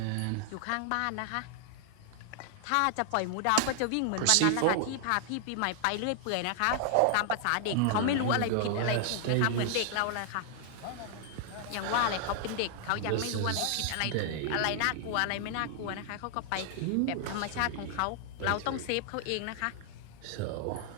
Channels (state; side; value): different; both; correlation 0.00